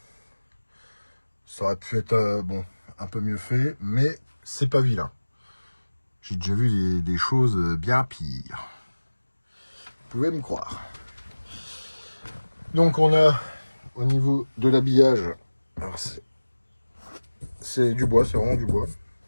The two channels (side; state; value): both; inverted; correlation -1.00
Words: Ça aurait pu être bon, un peu mieux fait, mais c'est pas vilain. J'ai déjà vu des choses bien pires. Vous pouvez me croire. Donc on a au niveau de l'habillage, c'est du bois, c'est vraiment du bois.